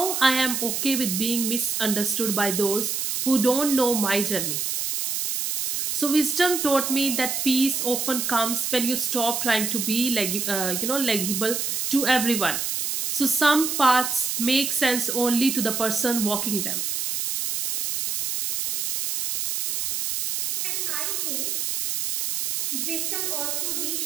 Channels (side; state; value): right; noise; hiss, 1 dB below the sound